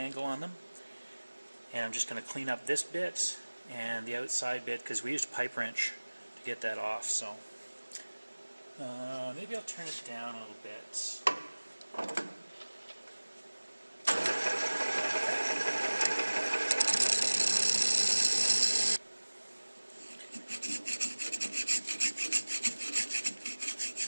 on them. And I'm just going to clean up this bit and the outside bit, because we used a pipe wrench to get that off. So maybe I'll turn it down a little bit.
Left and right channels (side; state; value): both; inverted; correlation -1.00